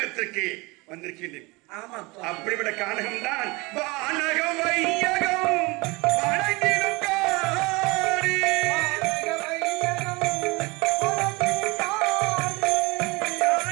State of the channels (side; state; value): left; quieter; 24.8 dB